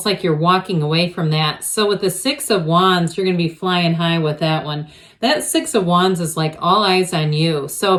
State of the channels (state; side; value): identical; both; correlation 1.00